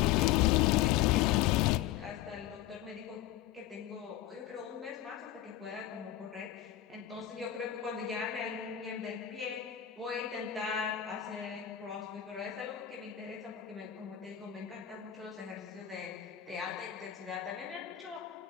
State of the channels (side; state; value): right; quieter; 11.8 dB